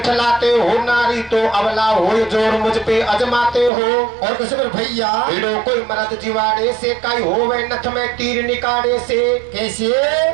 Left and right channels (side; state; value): left; drops out; at 3.7 s